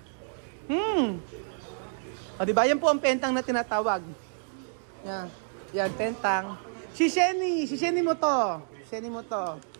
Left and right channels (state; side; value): silent; left; 59 dB below the other